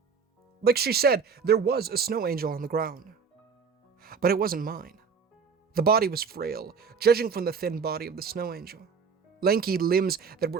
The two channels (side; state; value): left; quieter; 5.8 dB